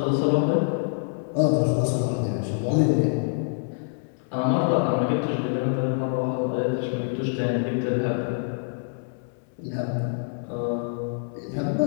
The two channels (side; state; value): right; silent; 61 dB below the other